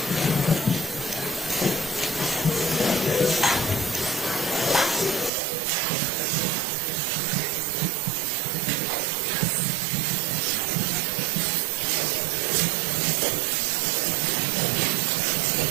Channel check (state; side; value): drops out; left; at 5.3 s